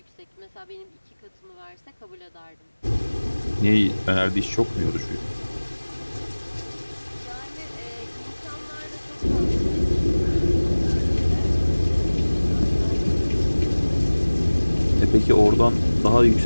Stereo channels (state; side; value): inverted; both; correlation -1.00